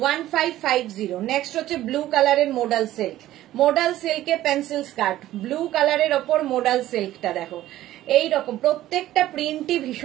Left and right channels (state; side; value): quieter; left; 14.3 dB